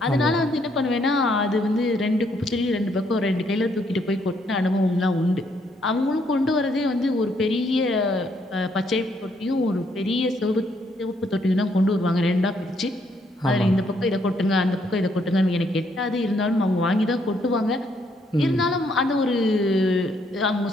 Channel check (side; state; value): both; normal; correlation 0.72